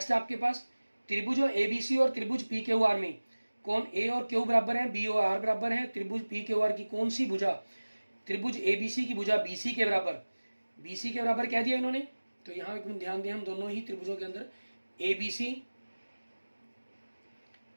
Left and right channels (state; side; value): inverted; both; correlation -1.00